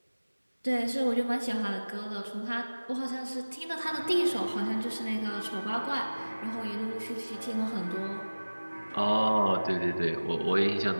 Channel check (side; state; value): both; inverted; correlation -1.00